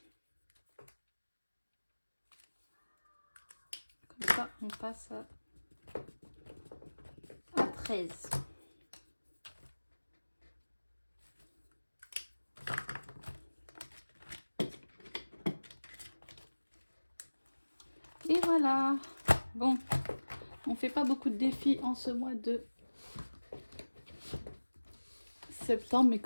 Comme ça, on passe à 13. Et voilà. Bon, on fait pas beaucoup de défis en ce mois de septembre, mais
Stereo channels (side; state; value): both; inverted; correlation -1.00